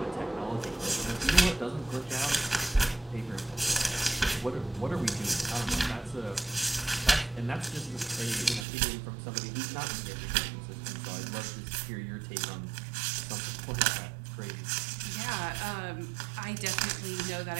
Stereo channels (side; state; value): left; drops out; at 8.7 s